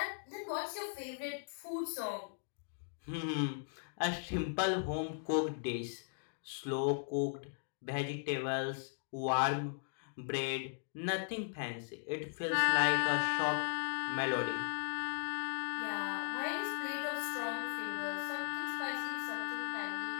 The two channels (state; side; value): silent; right; digital silence